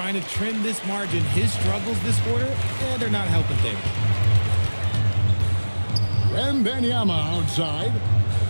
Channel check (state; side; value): inverted; both; correlation -1.00